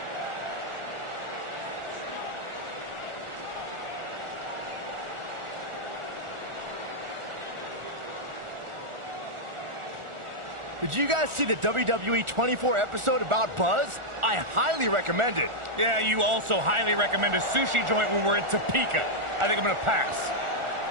Did you guys see the WWE 24 episode about Buzz? I highly recommend it. Yeah, you also highly recommend a sushi joint when we're in Topeka. I think I'm going to pass.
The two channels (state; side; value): late; left; 1.4 ms